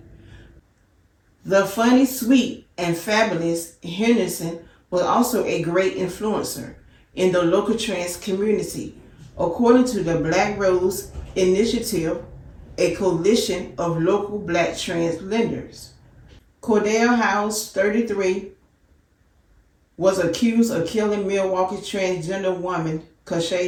The funny, sweet, and fabulous Henderson was also a great influencer in the local trans community, according to the Black Rose Initiative, a coalition of local black trans lenders. Cordell Howze, 33, was accused of killing Milwaukee transgender woman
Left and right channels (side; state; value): both; identical; correlation 1.00